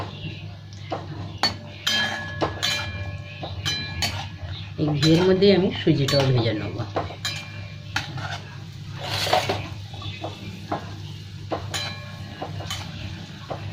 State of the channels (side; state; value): both; identical; correlation 1.00